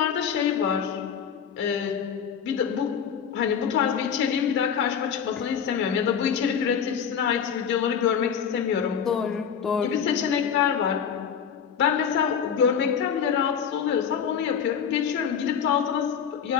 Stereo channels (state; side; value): quieter; right; 7.6 dB